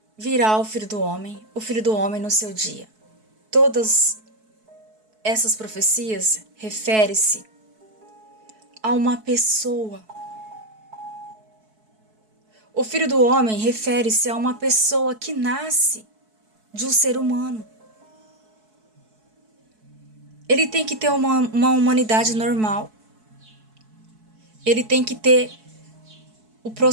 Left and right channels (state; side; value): late; left; 4.6 ms